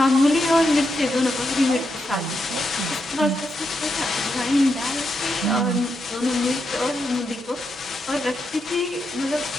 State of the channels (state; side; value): normal; both; correlation 0.83